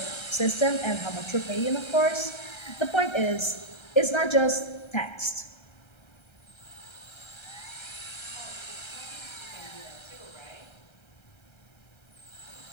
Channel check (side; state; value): right; late; 1.3 ms